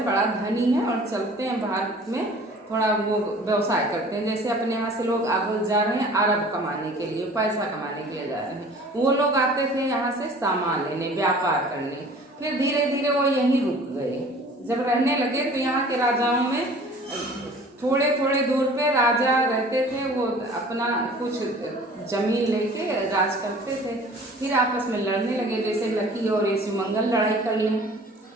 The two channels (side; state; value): both; normal; correlation 0.47